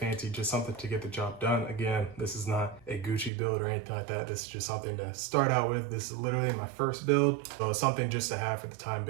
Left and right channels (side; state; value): left; drops out; at 3.3 s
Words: just something to get the job done. Again, this is not a Gucci build or anything like that. This is just something to start out with. This is literally my first build, so it's something just to have for the time